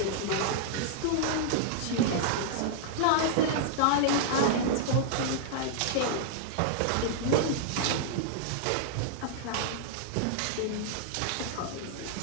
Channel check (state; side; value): different; both; correlation -0.01